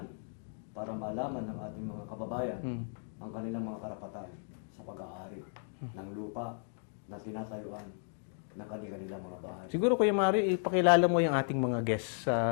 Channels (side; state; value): right; silent; digital silence